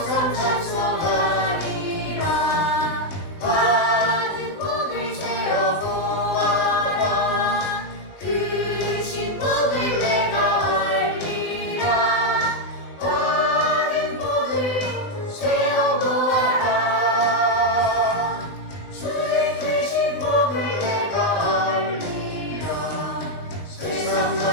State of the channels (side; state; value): right; late; 19 ms